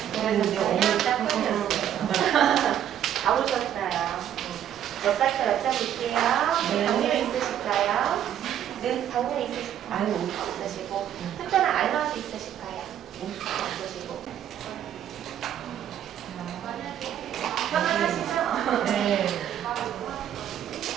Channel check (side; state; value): left; quieter; 10.4 dB